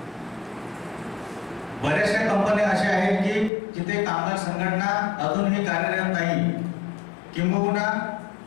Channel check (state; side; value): drops out; right; at 3.5 s